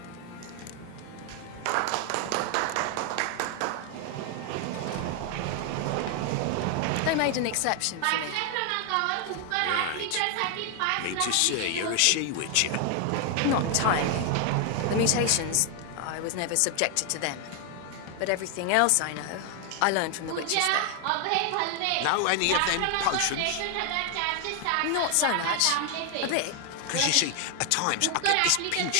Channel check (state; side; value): different; both; correlation 0.00